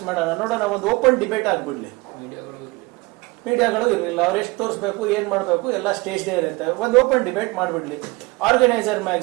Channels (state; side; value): quieter; left; 24.3 dB